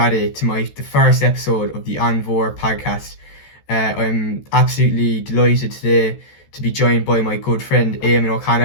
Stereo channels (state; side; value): late; right; 14 ms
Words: to the first episode of the An Mhór Podcast. I'm absolutely delighted today to be joined by my good friend Éamon